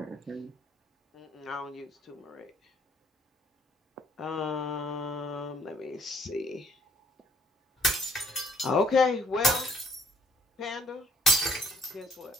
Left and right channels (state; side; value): normal; both; correlation 0.62